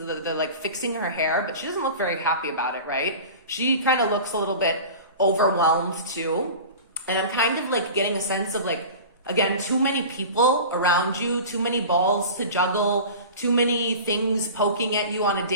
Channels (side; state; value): both; inverted; correlation -0.36